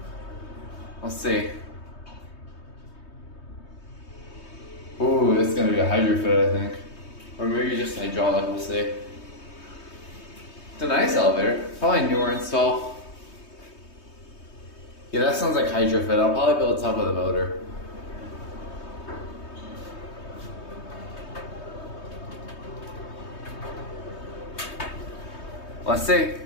Let's see. Ooh, it's going to be a Hydrofit, I think. Or maybe just hydraulic, we'll see. It's a nice elevator. Probably newer install. Yeah, that sounds like Hydrofit. I'll probably build top of the motor. Let's see.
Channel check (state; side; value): late; right; 3.2 ms